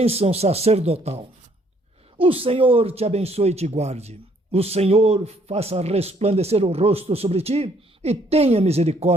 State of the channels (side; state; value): both; normal; correlation 0.65